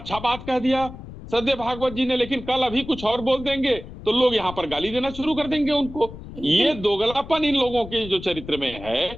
बात कह दिया श्रद्धेय भागवत जी ने, लेकिन कल अभी कुछ और बोल देंगे तो लोग यहाँ पर गाली देना शुरू कर देंगे उनको। ये दोगलापन इन लोगों के जो चरित्र में है,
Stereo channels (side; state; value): left; noise; rumble, 13 dB below the sound